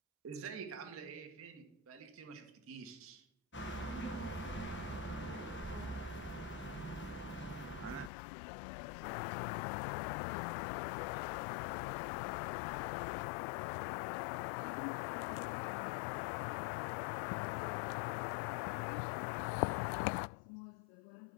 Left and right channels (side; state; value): right; drops out; at 8.1 s